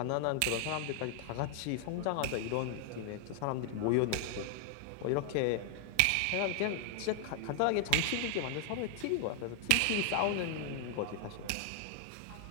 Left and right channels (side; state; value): both; different; correlation 0.00